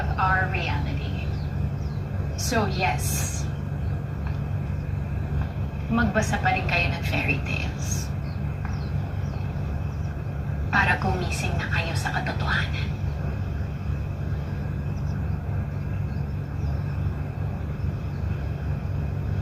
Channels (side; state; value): both; identical; correlation 1.00